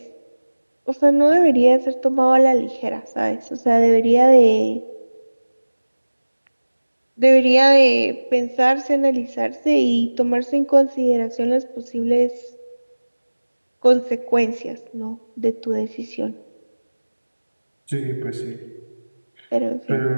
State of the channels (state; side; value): inverted; both; correlation -1.00